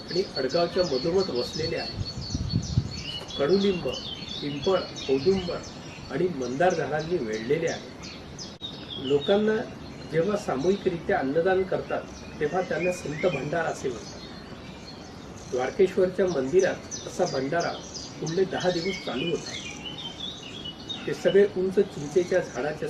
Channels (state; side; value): identical; both; correlation 1.00